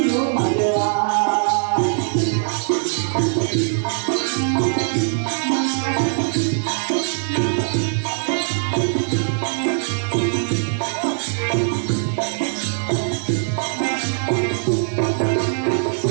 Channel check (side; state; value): left; silent; 60 dB below the other